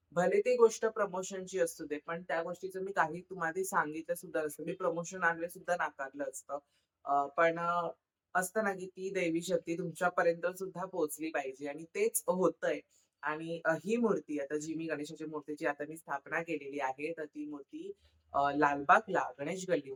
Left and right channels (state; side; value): identical; both; correlation 1.00